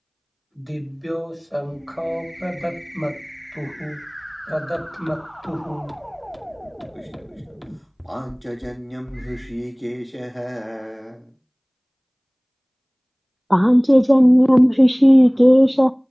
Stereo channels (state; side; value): identical; both; correlation 1.00